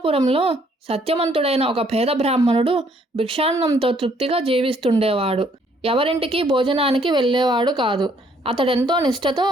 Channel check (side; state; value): both; normal; correlation 0.66